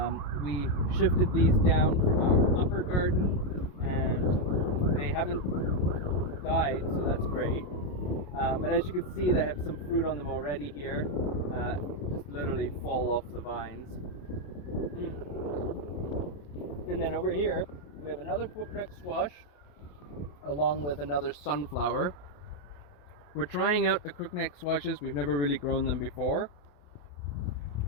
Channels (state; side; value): late; right; 28 ms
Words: We shifted these down from our upper garden, and they haven't died, so that's great. But as you can see, they have some fruit on them already here. Just literally fall off the vines. And then over here we have another crookneck squash along with another sunflower. We're trying out the crookneck squashes. We've never really grown them before.